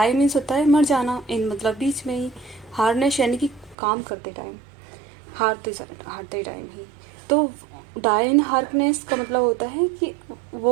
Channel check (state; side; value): drops out; left; at 3.8 s